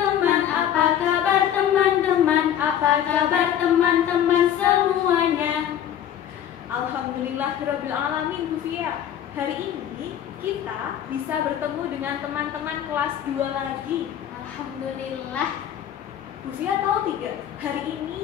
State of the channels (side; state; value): right; quieter; 10.2 dB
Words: Apa kabar teman-teman? Apa kabar teman-teman semuanya? Alhamdulillahirabbil alamin, Bu Fia. Hari ini kita bisa bertemu dengan teman-teman kelas 2 lagi. Alhamdulillah. Bu Fia tahu tidak, hari